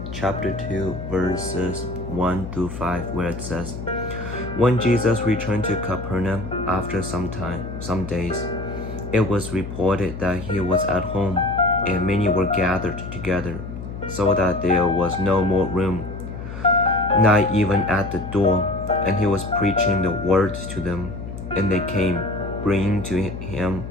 chapter 2, verses 1 through 5, where it says, When Jesus returned to Capernaum after some days, it was reported that he was at home, and many were gathered together, so that there was no more room, not even at the door, and he was preaching the word to them. And they came, bringing to him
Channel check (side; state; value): left; noise; hum, 9 dB below the sound